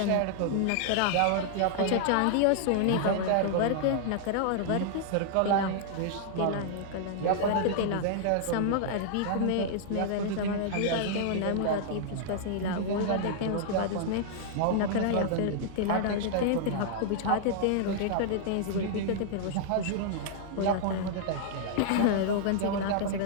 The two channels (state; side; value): different; both; correlation -0.01